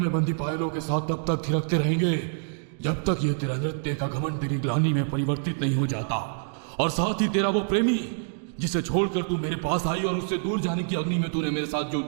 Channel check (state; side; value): silent; left; digital silence